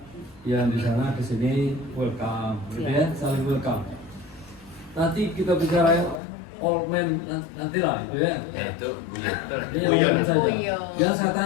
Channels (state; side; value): drops out; right; at 6.2 s